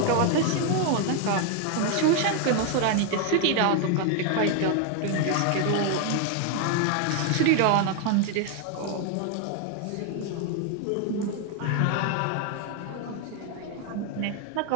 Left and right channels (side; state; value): both; different; correlation 0.01